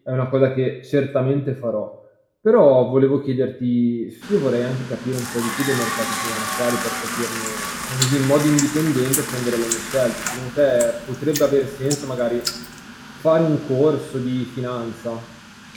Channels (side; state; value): both; identical; correlation 1.00